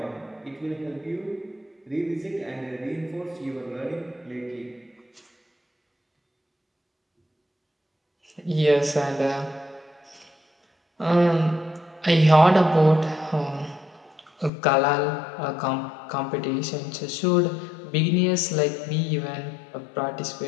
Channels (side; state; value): right; drops out; at 14.5 s